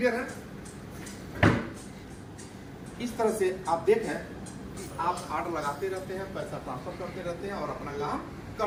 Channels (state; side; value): identical; both; correlation 1.00